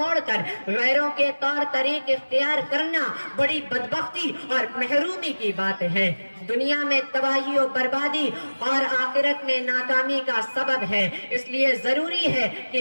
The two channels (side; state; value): both; inverted; correlation -1.00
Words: کر غیروں کے طور طریق اختیار کرنا بڑی بدبختی اور محرومی کی بات ہے، دنیا میں تباہی و بربادی اور آخرت میں ناکامی کا سبب ہے۔ اس لیے ضروری ہے